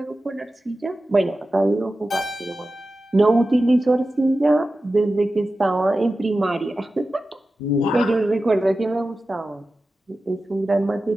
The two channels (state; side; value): normal; both; correlation 0.94